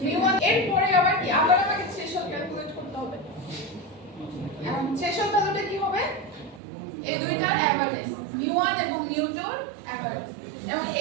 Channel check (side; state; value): left; drops out; at 6.6 s